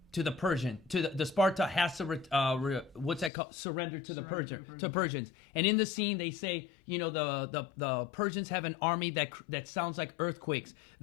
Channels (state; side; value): drops out; right; at 3.3 s